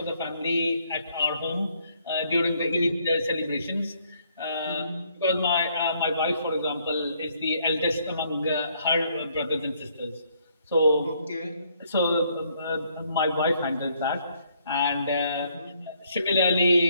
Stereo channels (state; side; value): inverted; both; correlation -0.68